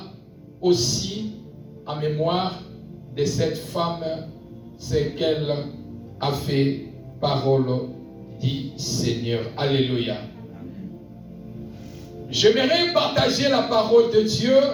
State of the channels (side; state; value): both; identical; correlation 1.00